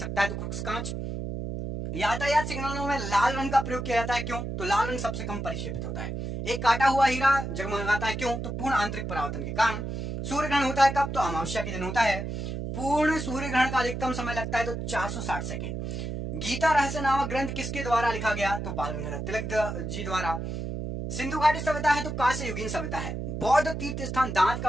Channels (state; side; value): noise; right; hum, 5 dB below the sound